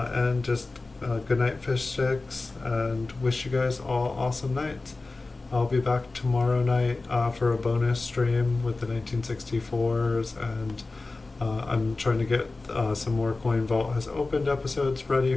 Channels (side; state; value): right; quieter; 3.4 dB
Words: just good night, fish sticks, and wish you guys all awesome nights. I'll be back tomorrow night for a bonus stream with the 1964s, and I'm trying to get some more Coin Vault has opened episodes ready